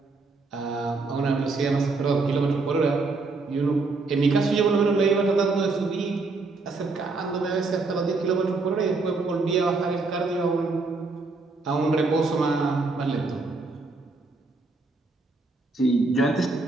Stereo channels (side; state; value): left; quieter; 3.7 dB